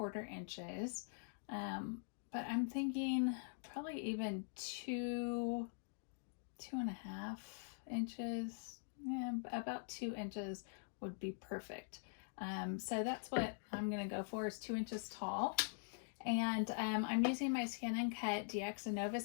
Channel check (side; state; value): right; silent; digital silence